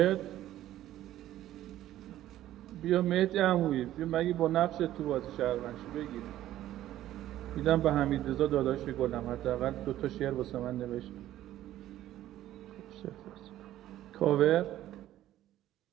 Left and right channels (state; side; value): quieter; left; 13.4 dB